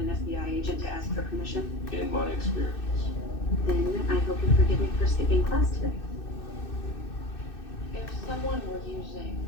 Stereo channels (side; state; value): right; late; 2.6 ms